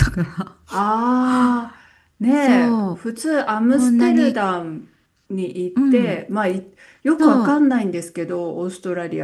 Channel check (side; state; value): both; identical; correlation 1.00